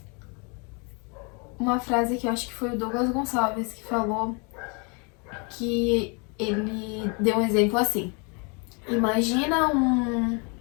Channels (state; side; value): quieter; right; 33.4 dB